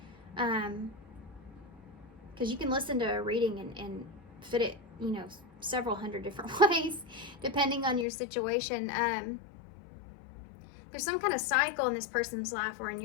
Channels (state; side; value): drops out; right; at 8.1 s